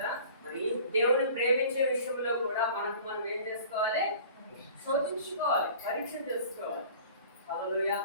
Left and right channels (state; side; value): inverted; both; correlation -0.46